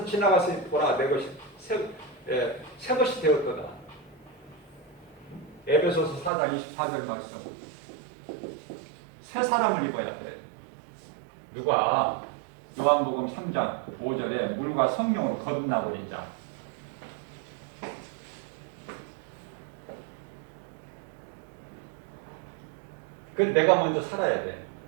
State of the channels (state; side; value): drops out; left; at 6.3 s